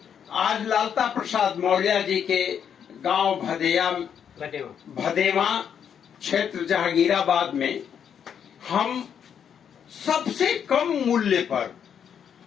आज लालता प्रसाद मौर्य जी के गांव भदेवा क्षेत्र जहांगीराबाद में हम सबसे कम मूल्य पर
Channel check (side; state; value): right; quieter; 8.1 dB